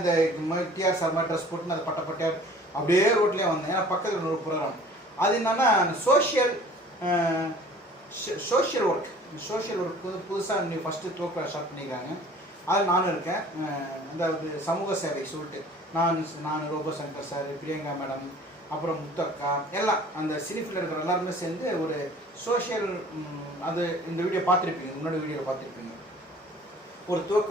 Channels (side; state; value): both; normal; correlation 0.49